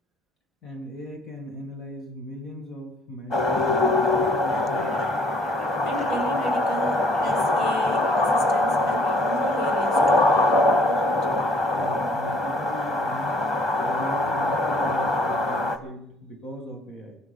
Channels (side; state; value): both; normal; correlation 0.61